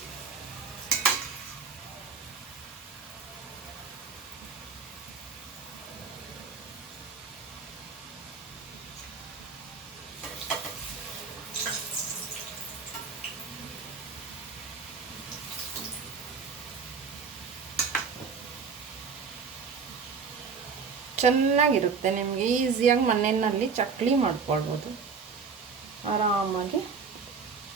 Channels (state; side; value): quieter; left; 5.5 dB